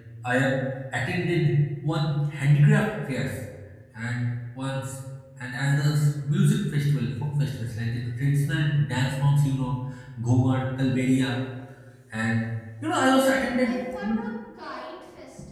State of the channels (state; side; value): identical; both; correlation 1.00